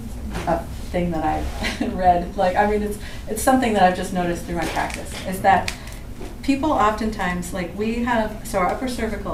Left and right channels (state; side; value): identical; both; correlation 1.00